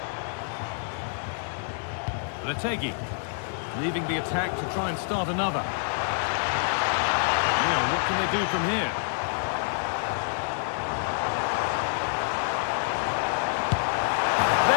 Retegui. Leaving the attack to try and start another. Now, what can they do from here?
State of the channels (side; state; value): right; silent; digital silence